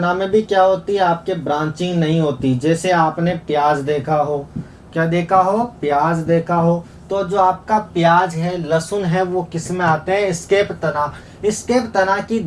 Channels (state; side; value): identical; both; correlation 1.00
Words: में भी क्या होती है आपके ब्रांचिंग नहीं होती। जैसे आपने प्याज देखा हो, क्या देखा हो प्याज देखा हो, तो जो आपका प्याज है लहसुन है वो किस में आते हैं एस्केप तना। एस्केप तना की